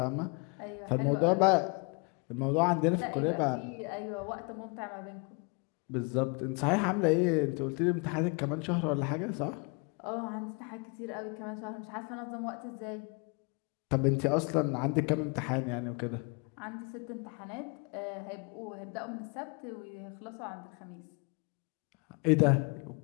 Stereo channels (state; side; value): quieter; right; 32.5 dB